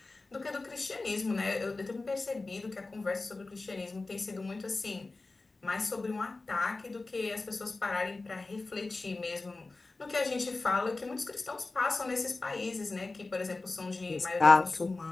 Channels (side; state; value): right; quieter; 3.5 dB